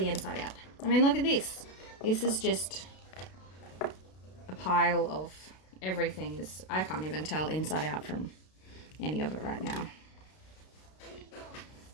inside out. I mean, look at this. This is just a pile of everything. I can't even tell inside out from any of it right now.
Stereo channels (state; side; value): late; right; 32 ms